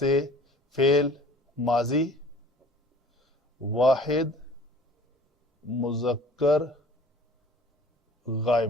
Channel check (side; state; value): both; normal; correlation 0.48